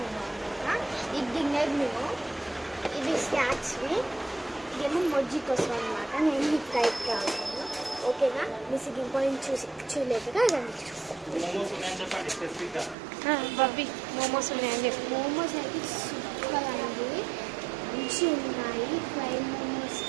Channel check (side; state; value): left; drops out; at 13.0 s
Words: ఇది డిన్నర్ మెనూ, ఇది స్నాక్స్వి, ఇదేమో మొజ్జి కోసం అనమాట. నేను మీకు టైప్ కావాలి, ఓకేనా? మిస్ ఇంపార్టెంట్ చూడలేదుగా బబ్బీ మోమోస్ ఉన్నాయని చెప్పి. మోమోస్ అయితే సూపర్ అండి, మంచి ఉన్నాయి. ఫ్రై మోమోస్